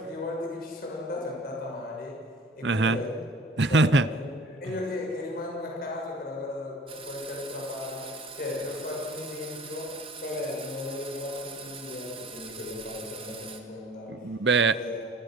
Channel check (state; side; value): normal; both; correlation 0.47